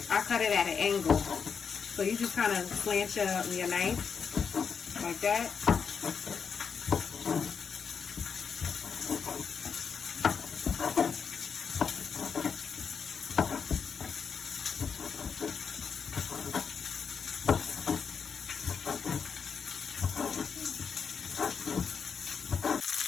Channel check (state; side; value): quieter; right; 6.3 dB